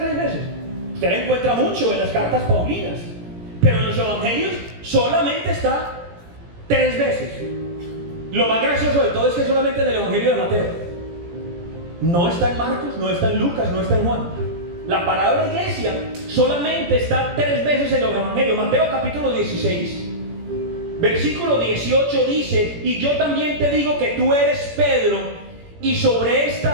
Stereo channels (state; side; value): late; left; 17 ms